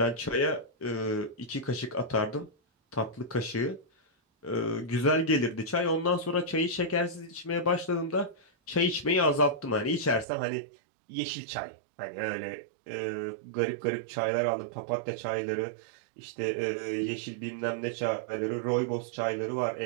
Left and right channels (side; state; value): left; drops out; at 10.2 s